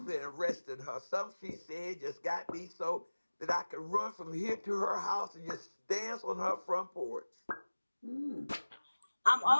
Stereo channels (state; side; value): inverted; both; correlation -1.00